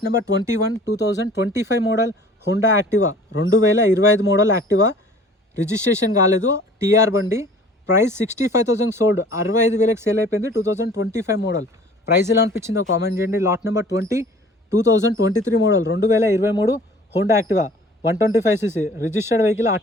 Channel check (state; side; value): normal; both; correlation 0.49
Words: number 21 2025 model Honda Activa, 2025 model Activa, registration కాలేదు, టీఆర్ బండి. ప్రైస్ 65,000 సోల్డ్, 65,000కి సేల్ అయిపోయింది. 2025 మోడల్. ప్రైస్ ఎలా అనిపించిందో కామెంట్ చేయండి. Lot number 20 2023 model 2023 Honda Activa, 125cc, registered vehicle,